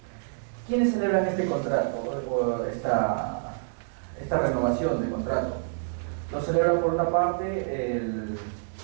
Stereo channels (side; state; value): left; silent; digital silence